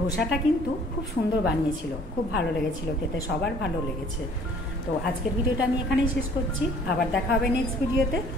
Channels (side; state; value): both; normal; correlation 0.55